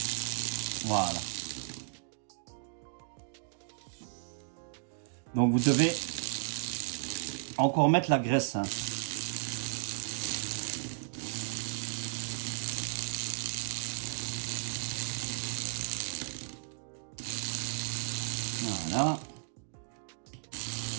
Voilà. Donc vous devez encore mettre la graisse. Hein. Voilà.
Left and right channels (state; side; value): silent; left; digital silence